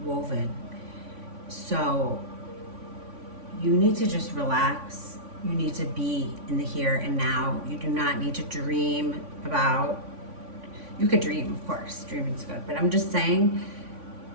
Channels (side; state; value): left; late; 3.5 ms